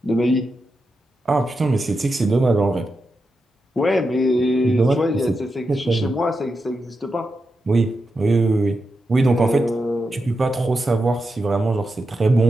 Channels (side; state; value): both; normal; correlation 0.87